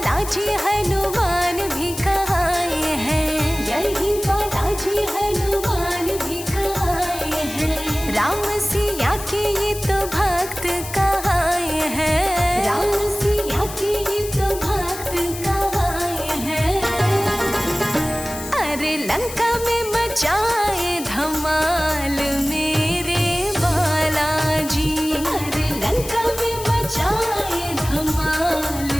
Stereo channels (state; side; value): noise; left; hiss, 11 dB below the sound